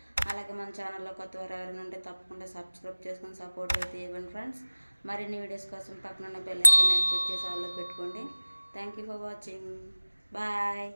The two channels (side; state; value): both; inverted; correlation -1.00